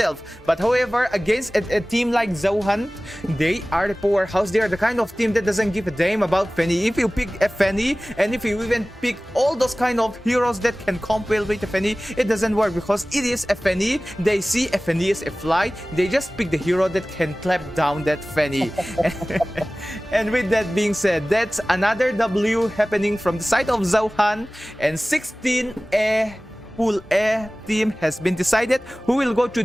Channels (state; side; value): normal; both; correlation 0.98